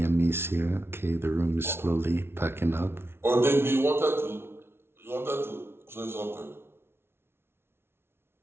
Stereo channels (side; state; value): left; late; 0.12 ms